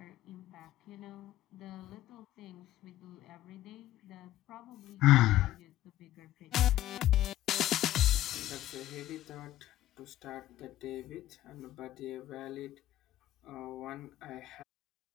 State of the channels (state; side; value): quieter; right; 14.3 dB